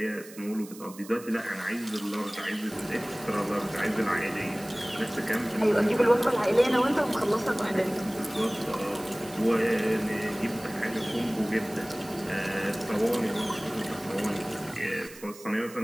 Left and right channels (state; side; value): noise; right; hiss, 18 dB below the sound